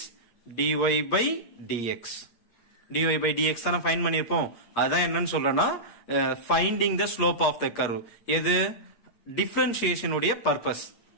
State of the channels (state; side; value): late; right; 8.5 ms